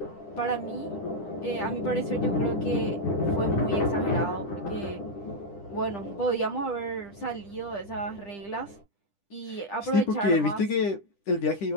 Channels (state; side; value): late; right; 10 ms